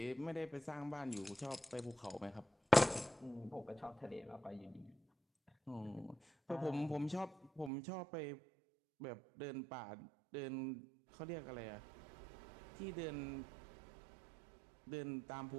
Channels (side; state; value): left; drops out; at 7.7 s